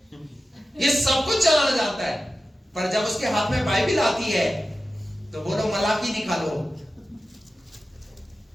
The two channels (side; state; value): both; normal; correlation 0.94